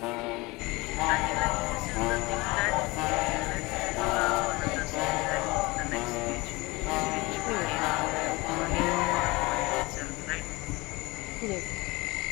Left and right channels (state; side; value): quieter; right; 23.3 dB